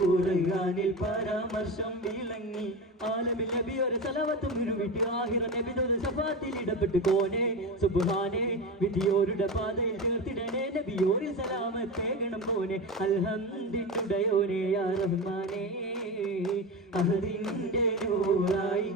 ഖുർആനിൽ പരാമർശം വിളങ്ങി ആലമിൽ നബി ഒരു സലവത്തും വിരുവിട്ട് ആഹിറ നബിയുടെ ശഫാത്തിൽ ഇടപെട്ട് കോനെ സുബ്ഹാനേ വിധിയോരുടെ പാതയിൽ ചേർത്തിടണേ നബിയോരിൽ സലാമത്തേകണം കോനെ അൽഹംദിനുടയോനെ യാ റഹ്മാനേ അഹദിന്റെ നൂറായി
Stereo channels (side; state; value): both; normal; correlation 0.22